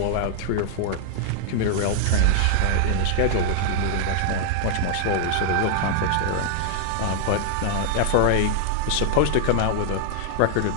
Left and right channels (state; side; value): different; both; correlation -0.01